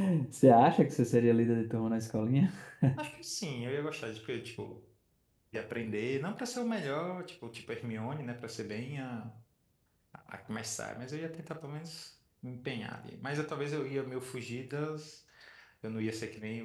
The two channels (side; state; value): both; identical; correlation 1.00